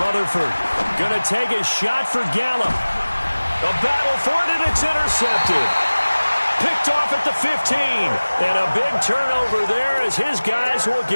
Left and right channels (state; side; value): inverted; both; correlation -1.00